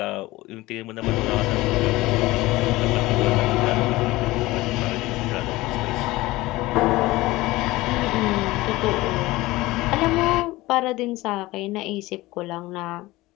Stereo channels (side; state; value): right; quieter; 19.3 dB